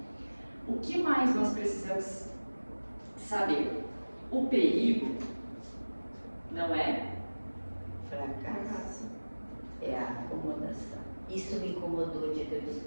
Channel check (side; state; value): both; inverted; correlation -1.00